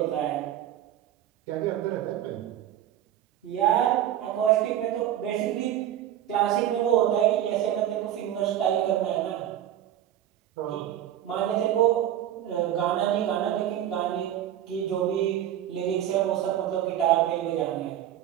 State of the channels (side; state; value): left; quieter; 11.5 dB